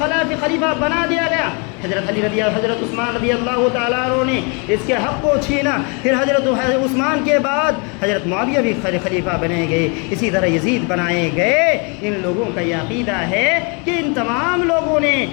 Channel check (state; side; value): quieter; right; 33.8 dB